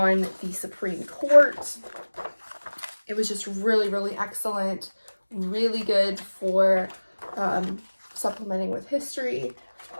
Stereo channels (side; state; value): both; inverted; correlation -1.00